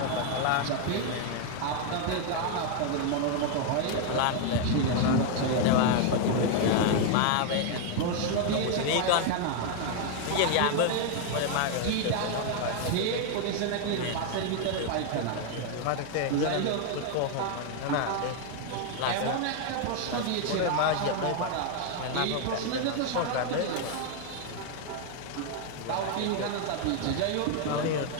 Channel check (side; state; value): both; different; correlation 0.01